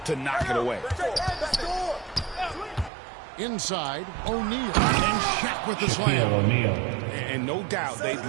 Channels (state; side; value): drops out; left; at 2.9 s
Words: to knock it away. Inside, O'Neal. And Shaq with the slam. O'Neal. And no doubt they'd